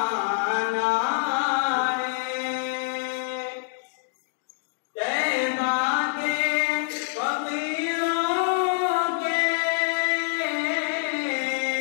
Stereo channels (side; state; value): right; silent; 61 dB below the other